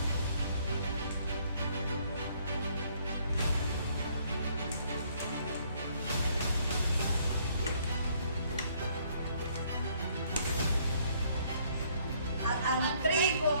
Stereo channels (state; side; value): inverted; both; correlation -0.65